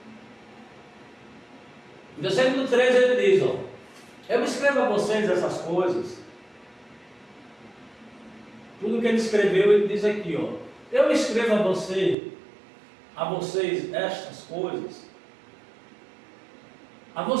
No versículo 13 ele diz, eu escrevo a vocês essas coisas. Tudo que ele escreveu, ele diz aqui, eu escrevo a vocês estas coisas, a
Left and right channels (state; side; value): drops out; left; at 12.2 s